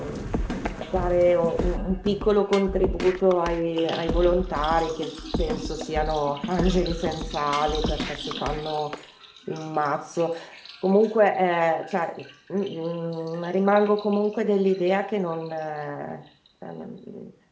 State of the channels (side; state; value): both; identical; correlation 1.00